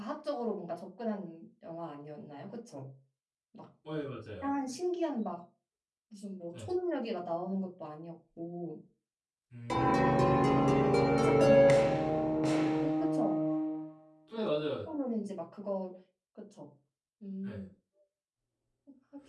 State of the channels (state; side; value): identical; both; correlation 1.00